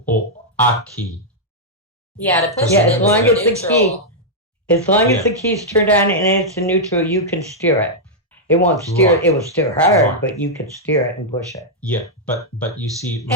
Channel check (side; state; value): both; normal; correlation -0.05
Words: or a key. Yeah, to push it as long as neutral. the key, as long as the key's turned on and it's in neutral, you can steer it. It won't steer. Right. It will steer hard, Right. but you could steer it and push it. Yeah, but you see, And